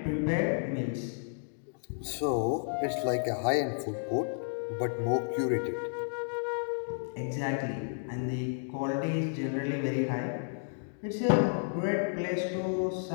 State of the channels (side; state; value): right; silent; digital silence